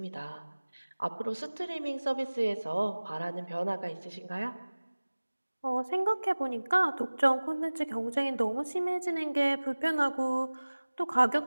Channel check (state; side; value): inverted; both; correlation -1.00